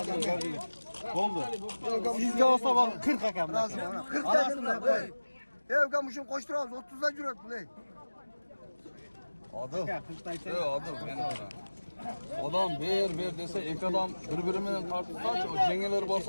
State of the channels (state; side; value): inverted; both; correlation -1.00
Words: Oldu. Sizde olsa bak 40 akam. 40 dedim lan. Ya ukam şunu koşturalım 30'da cüret bu ne? Adam. Adam. Adam bir dese iki adam birbirinden tartışsa o cengeleri